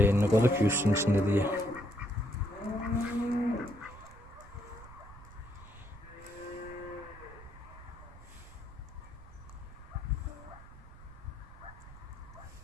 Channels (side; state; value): right; noise; rumble, 18 dB below the sound